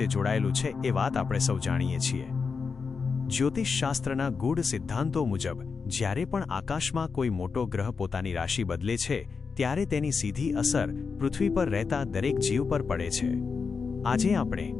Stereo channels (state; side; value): quieter; right; 5.2 dB